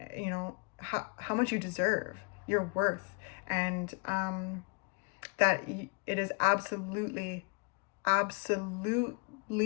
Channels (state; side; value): quieter; right; 34.0 dB